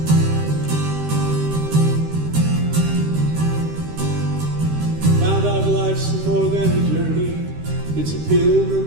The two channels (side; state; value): left; late; 13 ms